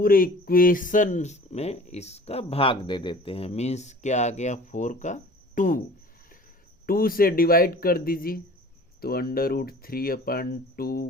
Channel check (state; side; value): normal; both; correlation 0.45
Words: इक्वेशन में इसका भाग दे देते हैं। मीन्स क्या आ गया, 4 का 2 से डिवाइड कर दीजिए, तो √3/2